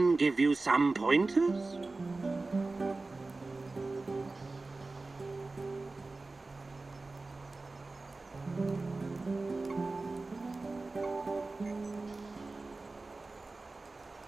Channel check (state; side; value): quieter; left; 3.4 dB